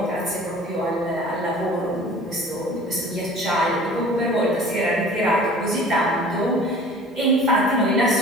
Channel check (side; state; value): both; normal; correlation 0.46